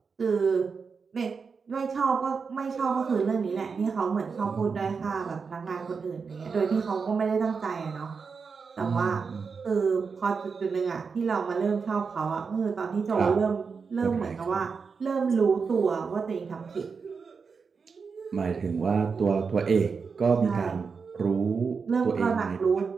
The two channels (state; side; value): quieter; left; 5.3 dB